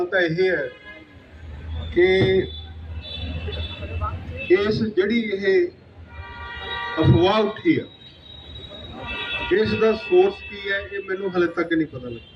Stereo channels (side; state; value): both; identical; correlation 1.00